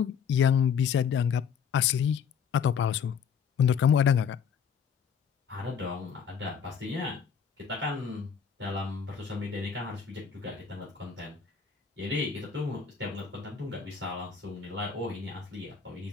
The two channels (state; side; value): quieter; right; 7.0 dB